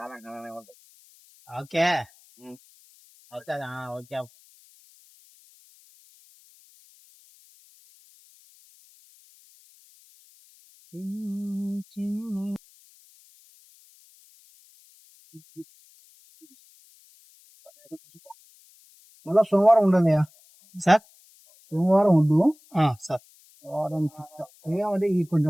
ओके. अच्छा हाँ ओके. మళ్ళా సోమవారం ఉండదు సార్. సోమవారం ఉండు సార్. వారం ఏమంటే ఈ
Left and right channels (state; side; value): noise; left; hiss, 28 dB below the sound